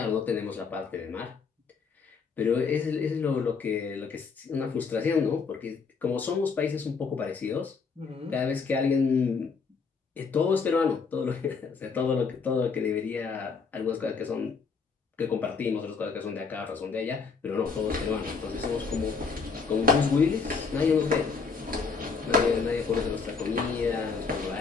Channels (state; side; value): quieter; right; 5.1 dB